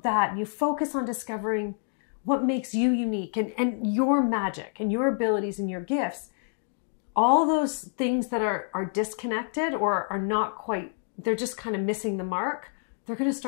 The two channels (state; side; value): silent; right; 60 dB below the other